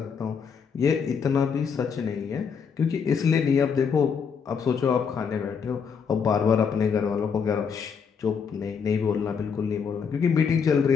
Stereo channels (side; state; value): right; quieter; 6.4 dB